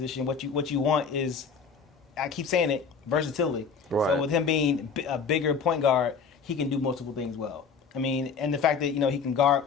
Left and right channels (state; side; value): quieter; right; 5.7 dB